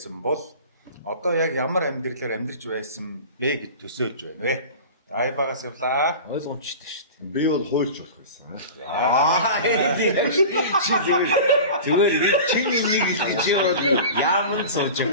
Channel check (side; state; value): both; inverted; correlation -0.35